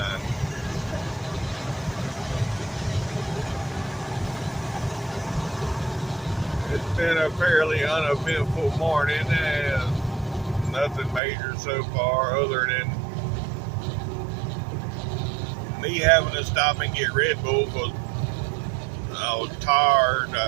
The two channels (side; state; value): left; drops out; at 11.2 s